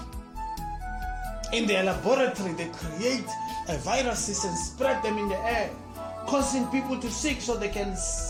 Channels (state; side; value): identical; both; correlation 1.00